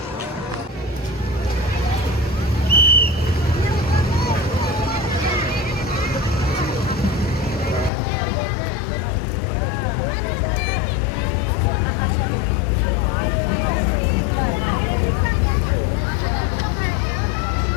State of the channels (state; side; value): drops out; right; at 7.9 s